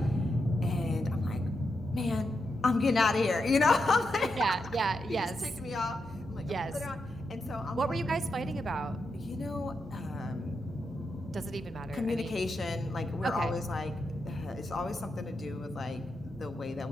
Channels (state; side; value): normal; both; correlation 0.85